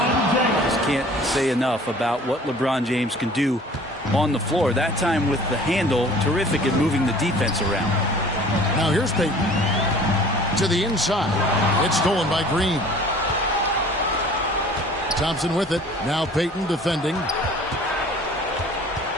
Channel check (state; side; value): normal; both; correlation 0.49